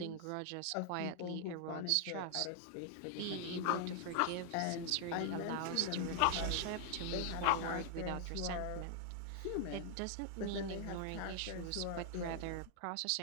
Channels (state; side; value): different; both; correlation 0.00